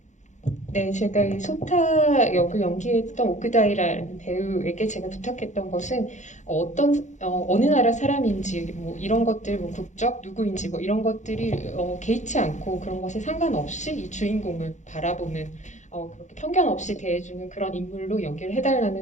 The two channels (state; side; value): late; right; 0.35 ms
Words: 네, 제가 이 소타 역을 연기했던 오크다이라는 배우에게 제가 부탁했던 것은 어느 나라 사람인지 뭐 이런 것들, 뭐 국적 누구인지 뭐 이런 것들이 개의치 않고 그런 것에 상관없이 이 주인공을 바라보는 그렇게 편견 없이 대해주는 그런 인물로 연기를